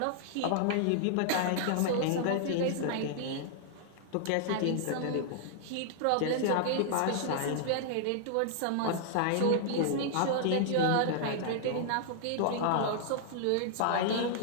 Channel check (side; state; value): both; different; correlation -0.01